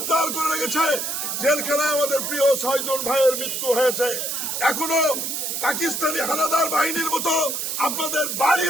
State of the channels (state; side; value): noise; right; hiss, 2 dB below the sound